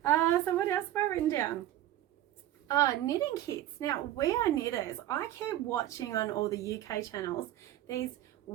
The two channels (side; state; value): left; quieter; 13.3 dB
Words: what else have I written down? Knitting kits. Now, We Are Knitters, I keep watching on all the UK channels these